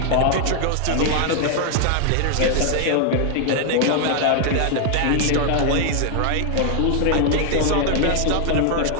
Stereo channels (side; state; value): both; different; correlation 0.00